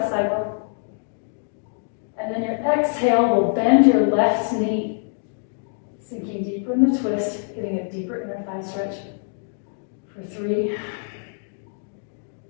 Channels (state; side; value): silent; right; digital silence